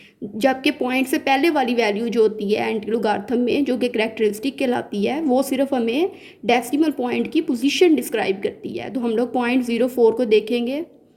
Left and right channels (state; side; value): identical; both; correlation 1.00